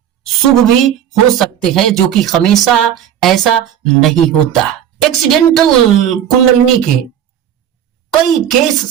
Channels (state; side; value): quieter; left; 10.0 dB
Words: शुभ भी हो सकते हैं, जो कि हमेशा ऐसा नहीं होता। एक्सीडेंटल कुंडलिनी के कई केस